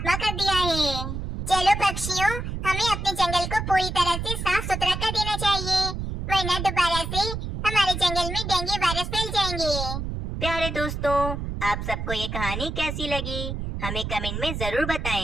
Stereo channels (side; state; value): right; noise; rumble, 4 dB below the sound